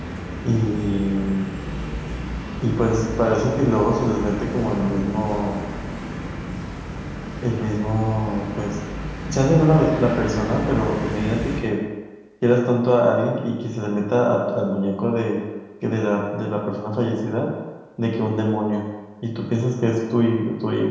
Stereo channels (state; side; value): identical; both; correlation 1.00